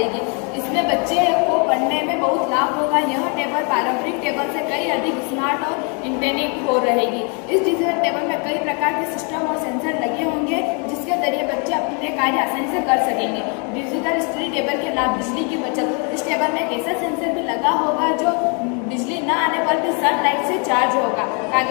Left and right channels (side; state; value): right; quieter; 36.1 dB